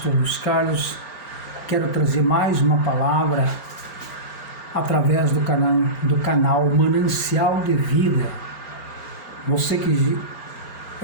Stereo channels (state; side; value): late; right; 4.4 ms